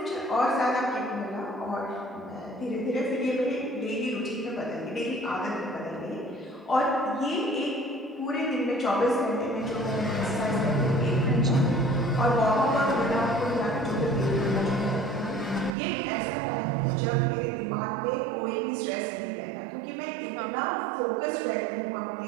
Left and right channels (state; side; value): drops out; left; at 15.8 s